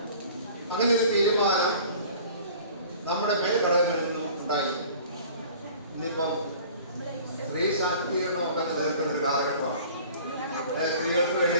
അങ്ങനെ ഒരു തീരുമാനം നമ്മുടെ മേൽഘടകങ്ങളിൽ നിന്നും ഉണ്ടായി. ഇന്നിപ്പം സ്ത്രീ ശാക്തീകരണമൊക്കെ നിലനിൽക്കുന്ന ഒരു കാലഘട്ടമാണ്. സ്ത്രീകൾക്ക് വേണ്ടി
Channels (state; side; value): inverted; both; correlation -0.47